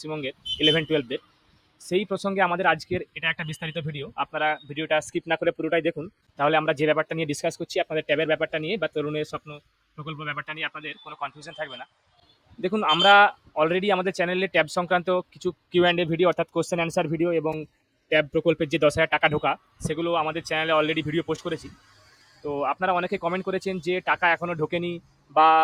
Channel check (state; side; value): identical; both; correlation 1.00